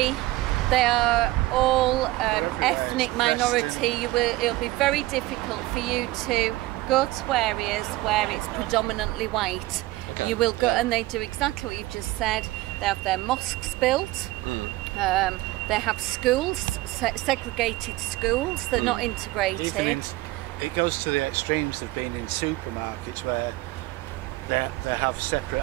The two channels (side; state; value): left; quieter; 18.5 dB